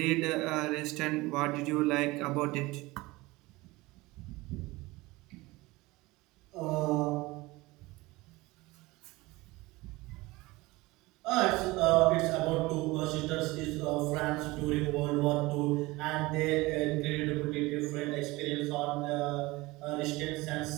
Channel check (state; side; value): quieter; left; 21.4 dB